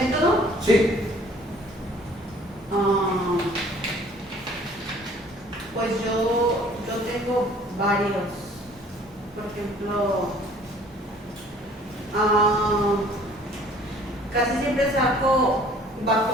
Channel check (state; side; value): normal; both; correlation 0.54